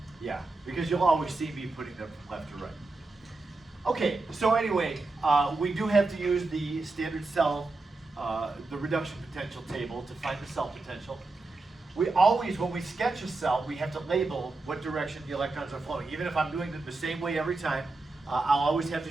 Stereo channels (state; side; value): quieter; left; 3.3 dB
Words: Yeah, because you'll always see me putting them from left to right. Okay, so anyway, we do have to use the standard cell, the reduction potential table to find the cell potential. We always, when we sketch a cell, we have to label what direction the electrons are flowing. Even if I'm doing it the same way every time, I'll always have to